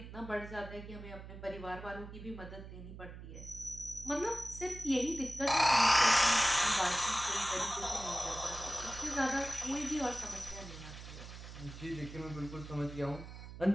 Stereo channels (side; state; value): right; noise; hum, 12 dB below the sound